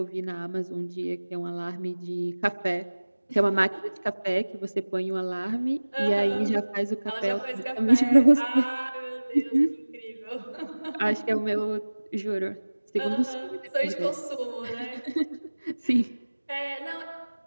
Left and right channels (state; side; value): inverted; both; correlation -1.00